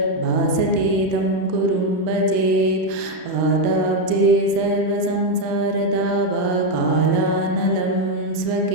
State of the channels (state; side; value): late; left; 33 ms